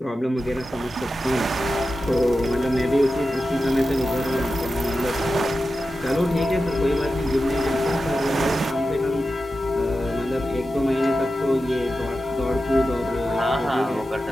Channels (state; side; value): normal; both; correlation 0.92